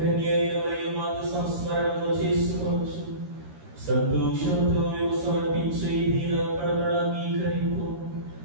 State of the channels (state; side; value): late; left; 13 ms